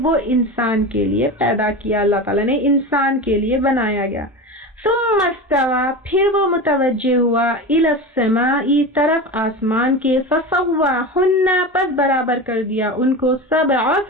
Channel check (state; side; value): normal; both; correlation 0.26